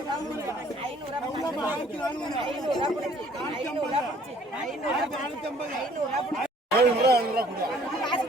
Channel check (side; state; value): both; normal; correlation 0.58